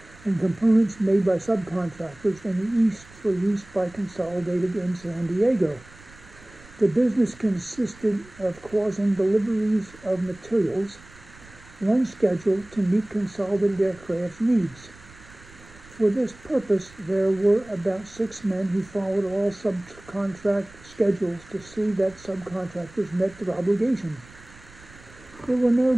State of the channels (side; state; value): right; noise; rumble, 23 dB below the sound